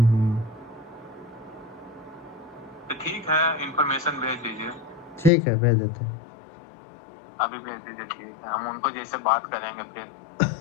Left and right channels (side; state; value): right; drops out; at 5.3 s